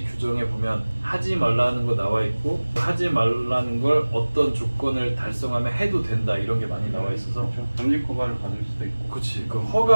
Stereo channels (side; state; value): both; inverted; correlation -1.00